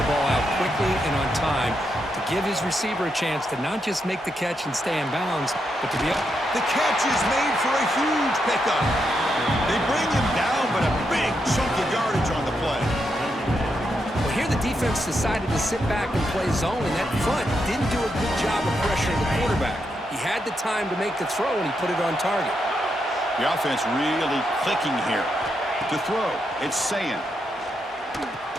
ball out quickly and on time to give his receiver a chance to not just make the catch and stay in bounds, but to be up. The catch is made for a huge pickup. They bring him down, but a big chunk of yardage on the play. Well, here the defense decided to sit back and play zone, and that front didn't do a good job of pressuring the quarterback. He had the time to make the throw, and he put it on target. The offense really clicking here. To throw, it's Sayan.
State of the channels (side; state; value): both; normal; correlation 0.82